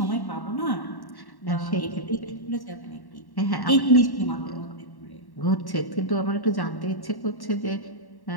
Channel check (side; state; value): right; late; 1.1 ms